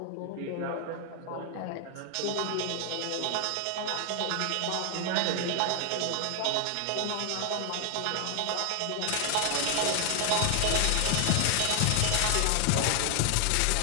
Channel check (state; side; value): different; both; correlation 0.00